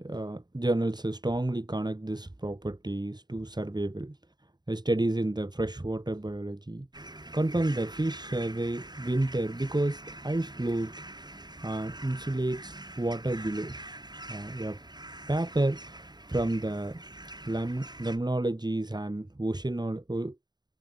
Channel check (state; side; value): late; left; 0.20 ms